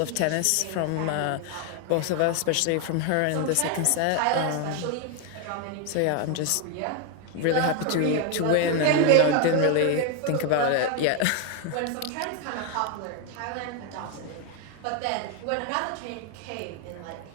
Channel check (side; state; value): both; different; correlation 0.01